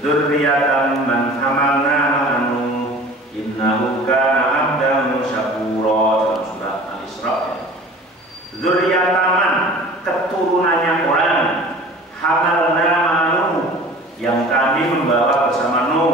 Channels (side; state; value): both; normal; correlation 0.43